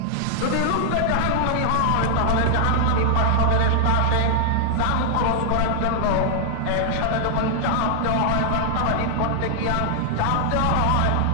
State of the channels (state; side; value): different; both; correlation 0.00